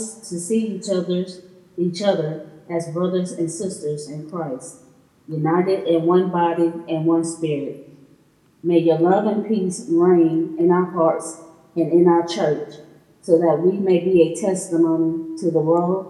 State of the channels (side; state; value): both; identical; correlation 1.00